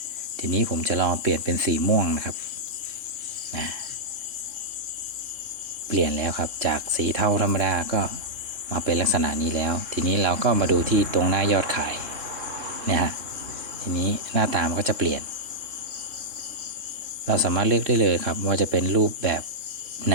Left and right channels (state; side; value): late; left; 3.7 ms